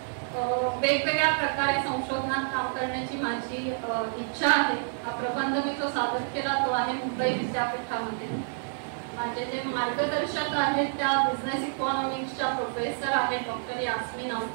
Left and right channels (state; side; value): silent; left; digital silence